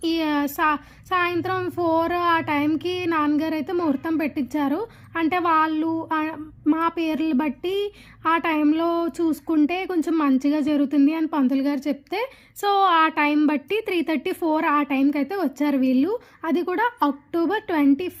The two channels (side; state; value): both; identical; correlation 1.00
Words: ఈ సా సాయంత్రం 4 ఆ టైంకి నాన్నగారైతే ముహూర్తం పెట్టిచ్చారు. అంటే వాళ్ళు మా పేర్లు బట్టి ఆ టైంలో చూసుకుంటే కొంచెం మంచిగా జరుగుతుంది అని పంతులు గారు చెప్తే, సో, ఆ టైం బట్టి 3:30, 4 ఆ టైంకైతే వచ్చారు వీళ్ళు. అది కూడా అక్టోబర్ 21,